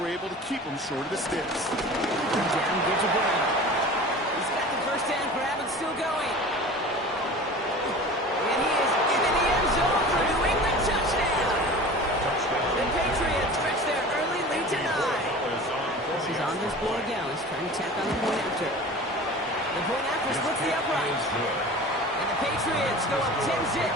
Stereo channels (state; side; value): normal; both; correlation 0.38